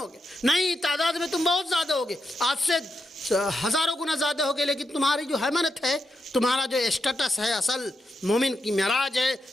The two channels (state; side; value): normal; both; correlation 0.85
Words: نہیں، تعداد میں تم بہت زیادہ ہوگے، آج سے ہزاروں گنا زیادہ ہوگے، لیکن تمہاری جو حیمنت ہے، تمہارا جو اسٹیٹس ہے، اصل مومن کی معراج ہے،